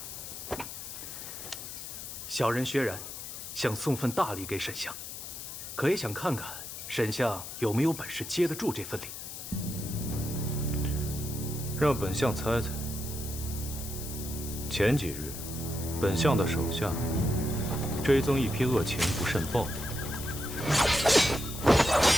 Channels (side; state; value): left; noise; hiss, 9 dB below the sound